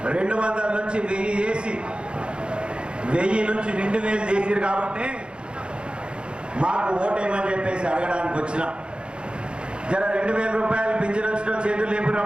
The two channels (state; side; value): late; left; 0.054 ms